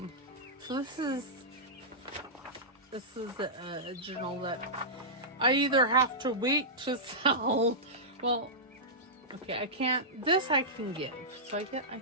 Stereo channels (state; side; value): normal; both; correlation -0.14